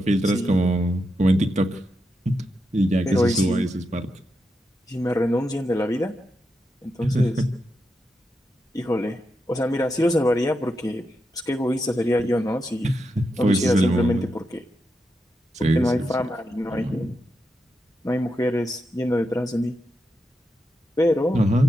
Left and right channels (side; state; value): both; normal; correlation 0.86